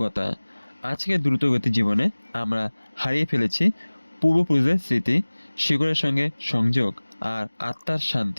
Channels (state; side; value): inverted; both; correlation -1.00